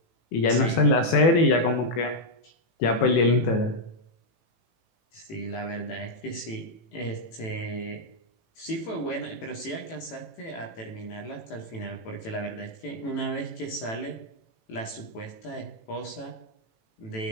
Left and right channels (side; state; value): right; late; 18 ms